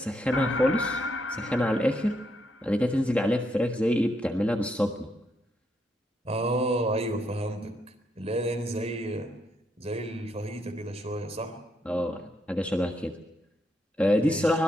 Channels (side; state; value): both; normal; correlation 0.77